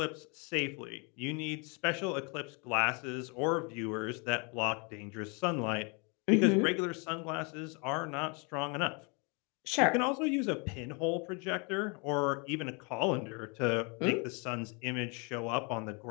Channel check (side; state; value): right; quieter; 32.6 dB